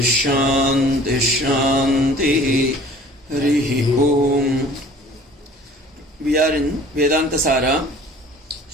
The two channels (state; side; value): normal; both; correlation 0.49